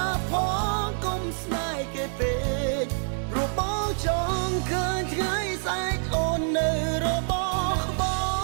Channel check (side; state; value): left; silent; 61 dB below the other